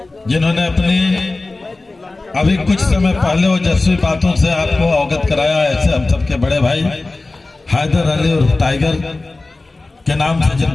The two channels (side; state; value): right; quieter; 3.2 dB